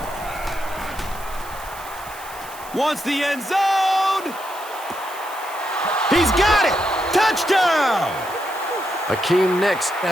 Wants the end zone. He's got it. Touchdown. Akeem Nix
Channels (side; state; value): right; noise; hiss, 17 dB below the sound